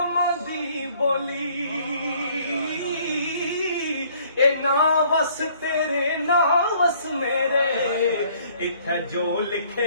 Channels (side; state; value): both; inverted; correlation -0.60